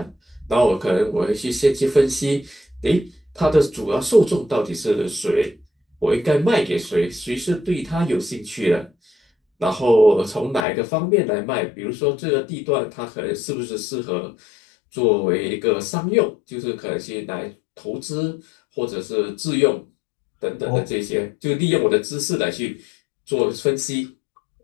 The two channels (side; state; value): right; drops out; at 10.7 s